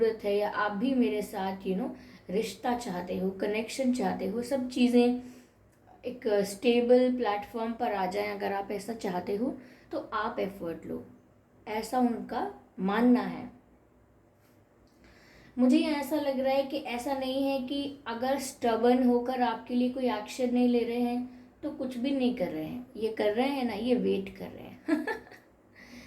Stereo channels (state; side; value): identical; both; correlation 1.00